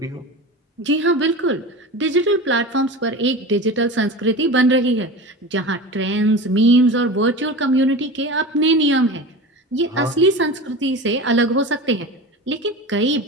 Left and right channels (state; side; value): normal; both; correlation 0.30